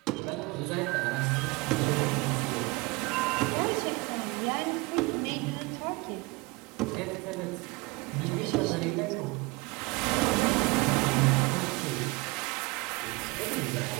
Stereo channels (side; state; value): left; quieter; 25.4 dB